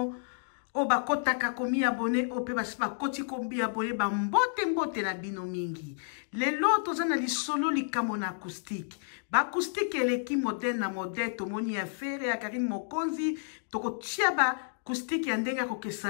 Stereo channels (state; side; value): silent; right; digital silence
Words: o bakotaka komi abone o pe basi bakoti kombi abone ba mbote na bino mingi. Lelo toza na lisolo likamo na acoustique. Ba acoustique eleki moderne na moderne tomoni ya fere ya Karim Mokonzi tokotia ba acoustique ya ndenge